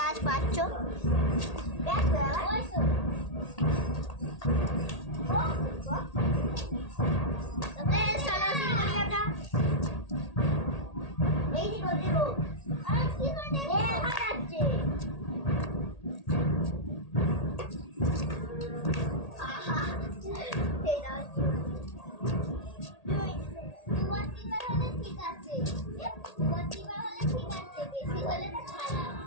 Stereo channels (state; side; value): late; right; 1.8 ms